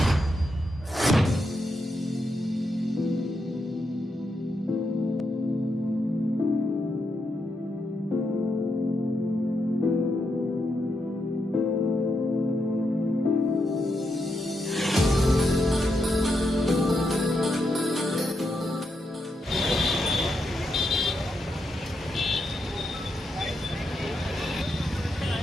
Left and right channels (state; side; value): normal; both; correlation 0.83